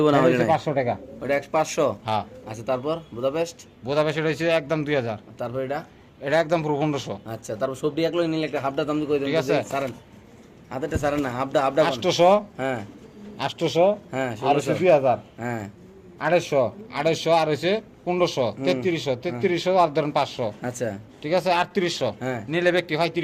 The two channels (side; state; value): both; identical; correlation 1.00